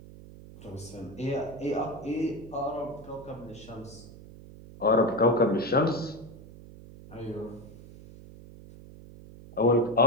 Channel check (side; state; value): right; noise; hum, 18 dB below the sound